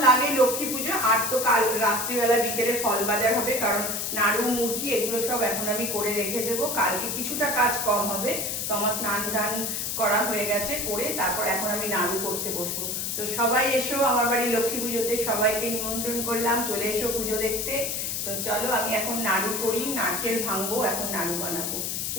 লাগে লক্ষ্মী পুজো। আর তো কাল রাত্রিবেলা বিকেলে ফল বাজার হবে, কারণ নাড়ু মুড়কি এগুলো সব এখন আমি করে রেখে দেবো। কালকে কিছুটা কাজ কম হবে। তো আমার স্নান টান করা হয়ে গেছে, করে তারপর এখন আমি নাড়ু করতে বসবো। তো সবাই এসো আমার বাড়ি লক্ষ্মী পুজোতে, সবাইকে নিমন্ত্রণ করলাম, চলে এসো পুজো দেখতে। তো চলো আমি এখন নাড়ু করি, নারকেল ভাঙবো, এখন নাড়ু বানাবো।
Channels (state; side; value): noise; left; hiss, 2 dB below the sound